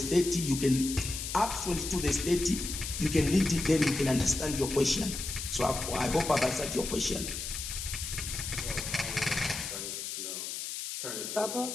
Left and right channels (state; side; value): noise; left; hiss, 5 dB below the sound